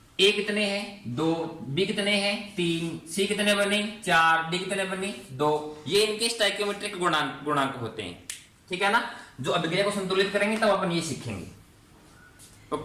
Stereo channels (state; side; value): identical; both; correlation 1.00